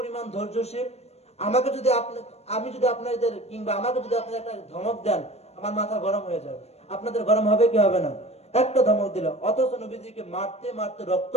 ধৈর্যশীল। আমাকে যদি আমি যদি আপনাদের কিংবা আমাকে যদি আপনারা একটা ধমক দেন, আমার মাথা গরম হয়ে যাবে। আপনাদের গরম হবে কি হবে না? একটা ধমক দিল, অথচ নবীজিকে মারতে মারতে রক্ত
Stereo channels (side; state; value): right; late; 0.31 ms